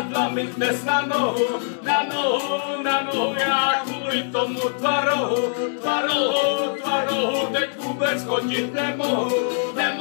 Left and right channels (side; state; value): right; silent; 64 dB below the other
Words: mi dnes na nohu. Já kvůli tomu tvaru teď vůbec chodit nemohu.